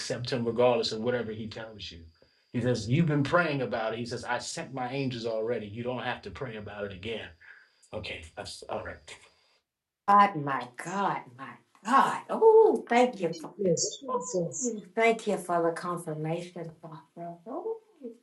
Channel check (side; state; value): both; identical; correlation 1.00